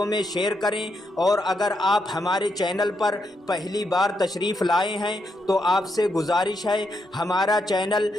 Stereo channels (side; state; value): both; normal; correlation 0.80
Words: میں شیئر کریں۔ اور اگر آپ ہمارے چینل پر پہلی بار تشریف لائے ہیں تو آپ سے گزارش ہے ہمارا چینل